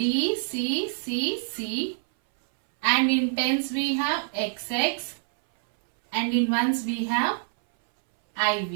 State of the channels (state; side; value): silent; left; 59 dB below the other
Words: C, C, C. And in tens we have XX. And in ones we have